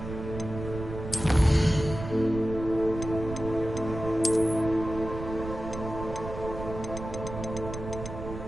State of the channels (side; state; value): right; noise; rumble, 8 dB below the sound